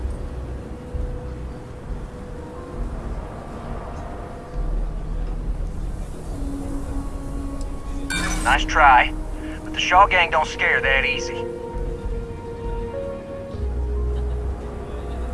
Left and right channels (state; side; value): identical; both; correlation 1.00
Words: Nice try, but the Shaw gang don't scare that easy.